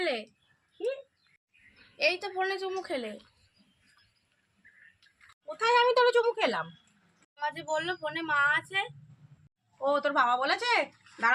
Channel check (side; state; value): both; identical; correlation 1.00